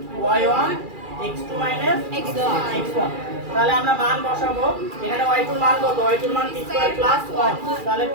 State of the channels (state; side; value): late; left; 2.4 ms